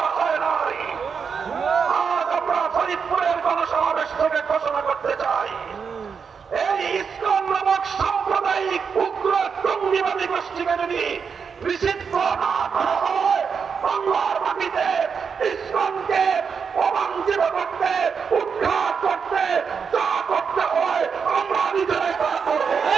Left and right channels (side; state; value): left; quieter; 6.1 dB